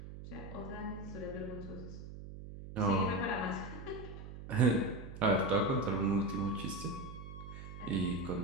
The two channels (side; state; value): right; noise; hum, 11 dB below the sound